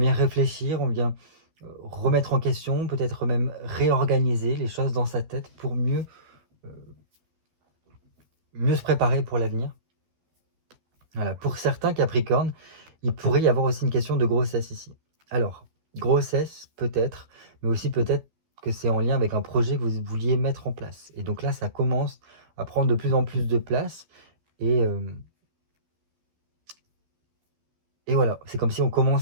réfléchir, on vient remettre en question, peut-être même réorganiser les choses dans sa tête pour mieux se préparer pour l'avenir. Voilà, pour certains Capricornes, il pourrait y avoir aussi une question de grossesse ici. Alors, grossesse peut-être, mais aussi peut-être que c'est en lien avec un projet que vous vouliez mettre en place. Et donc là, ça commence à prendre de plus en plus de place, et voilà, c'est comme si on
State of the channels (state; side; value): late; left; 12 ms